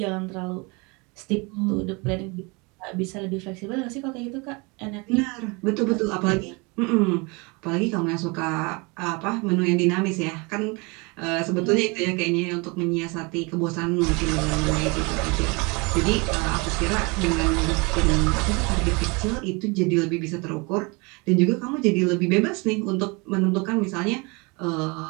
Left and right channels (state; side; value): quieter; left; 28.4 dB